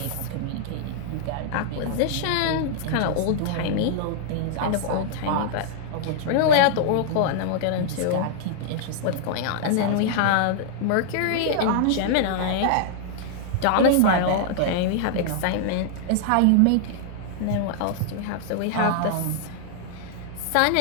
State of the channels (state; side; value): different; both; correlation -0.01